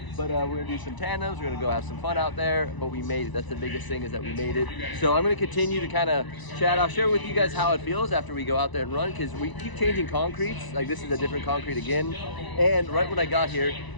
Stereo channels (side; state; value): right; late; 1.0 ms